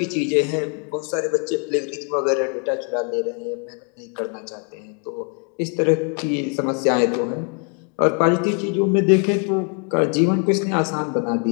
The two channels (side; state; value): right; quieter; 39.1 dB